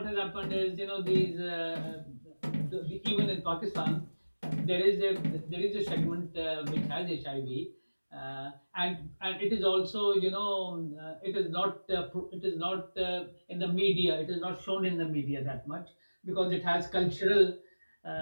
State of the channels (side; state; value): both; inverted; correlation -1.00